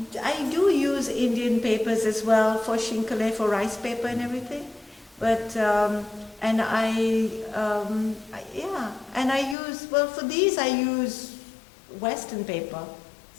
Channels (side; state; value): right; drops out; at 9.6 s